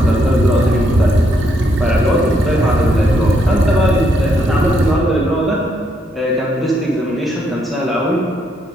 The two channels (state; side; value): normal; both; correlation 0.75